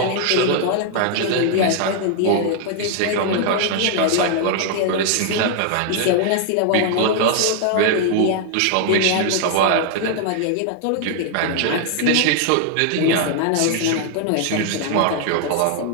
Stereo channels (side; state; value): both; different; correlation 0.00